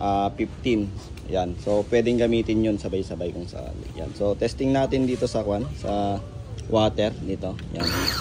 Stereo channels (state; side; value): identical; both; correlation 1.00